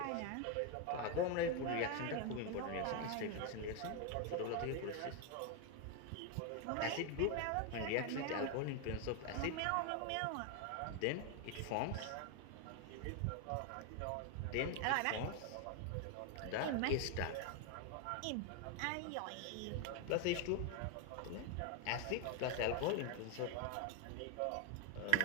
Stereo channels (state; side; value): different; both; correlation 0.01